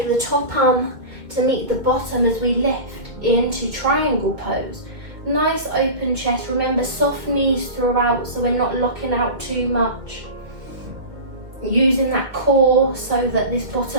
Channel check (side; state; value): left; late; 2.2 ms